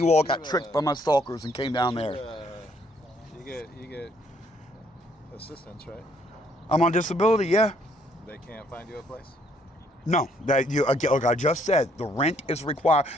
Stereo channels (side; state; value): both; normal; correlation 0.67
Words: all got tricked by my stalkers and came down there. You get assistance, right? I'm on disability, yeah. They can't find you a place? No, like I just said, the rent is required.